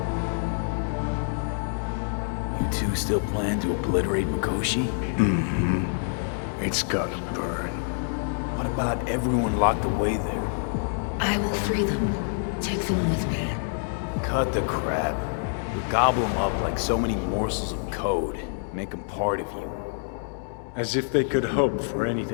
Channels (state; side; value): silent; right; digital silence